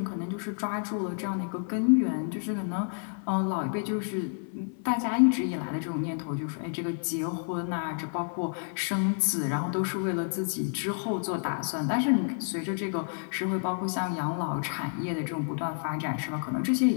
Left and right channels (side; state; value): right; silent; 58 dB below the other